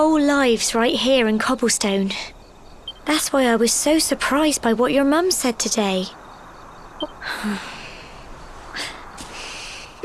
lives right here in Cobblestone. That's why I was so surprised by what your mum said today.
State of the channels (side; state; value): both; identical; correlation 1.00